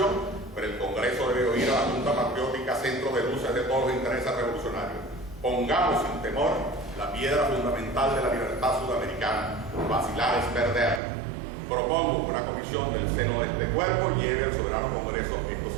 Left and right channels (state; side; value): drops out; left; at 11.0 s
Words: pero el Congreso debe oír a la Junta Patriótica, centro de luces de todos los intereses revolucionarios. Pongamos sin temor la piedra fundamental de la libertad sudamericana. Vacilar es perder. Propongo que una comisión del seno de este cuerpo lleve al soberano Congreso estos